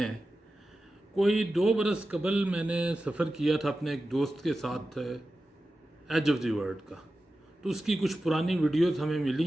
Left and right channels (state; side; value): normal; both; correlation 0.93